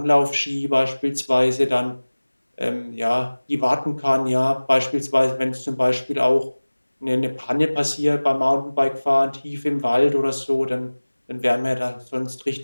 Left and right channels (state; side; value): inverted; both; correlation -1.00